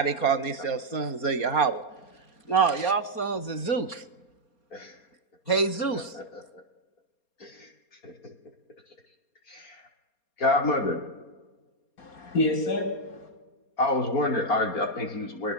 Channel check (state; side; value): late; right; 4.3 ms